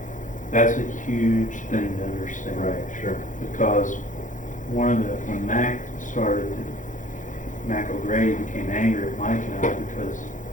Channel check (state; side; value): late; right; 0.37 ms